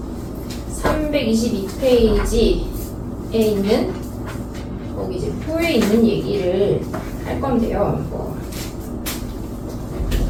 322페이지에 있는 거기 이제 표에 있는 얘기를 할 건데요.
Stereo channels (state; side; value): identical; both; correlation 1.00